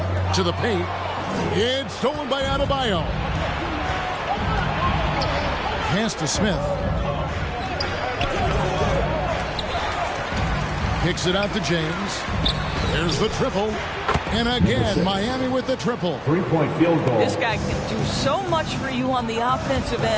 To the paint. It's stolen by Adebayo. Pass to Smith. Kicks it out to James. There's the triple. And again, Miami with the triple. Three-point field goal. This guy can do so much for you on the offensive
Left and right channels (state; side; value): identical; both; correlation 1.00